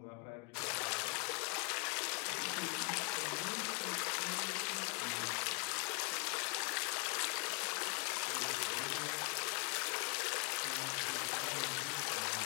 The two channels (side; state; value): right; quieter; 35.2 dB